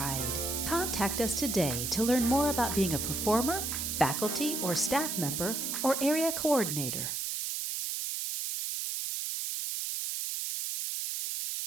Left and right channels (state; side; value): noise; right; hiss, 2 dB below the sound